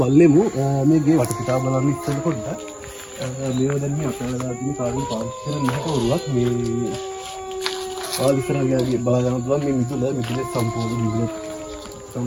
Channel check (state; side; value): identical; both; correlation 1.00